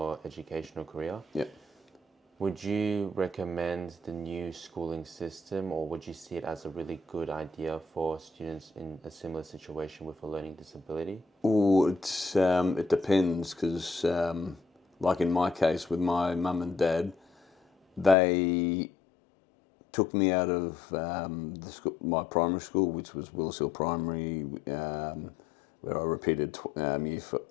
educational career, Yeah. would you recommend the new schooling system, or would you see it as a really good idea for students in a similar situation with a learning disability? Oh, it depends, because like in my case with my mum and dad, they took me out of my primary school, which was Willis Hill Primary, where I repeated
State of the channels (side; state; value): right; drops out; at 18.2 s